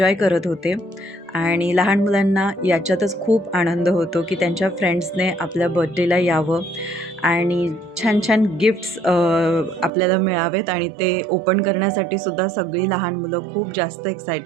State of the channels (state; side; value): drops out; left; at 9.9 s